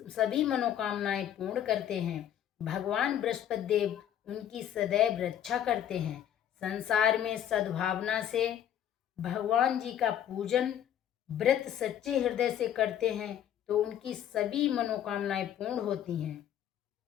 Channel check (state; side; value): quieter; right; 10.3 dB